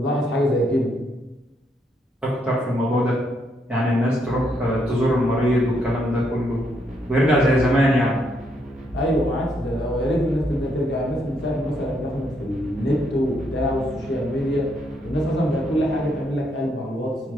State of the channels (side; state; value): both; normal; correlation 0.75